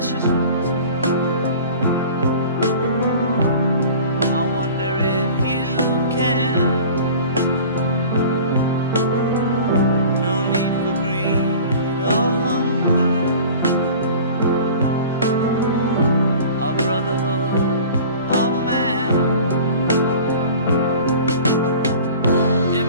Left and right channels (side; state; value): both; inverted; correlation -0.42